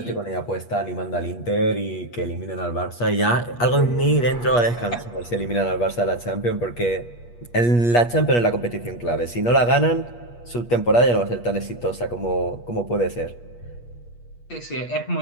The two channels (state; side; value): late; right; 8.4 ms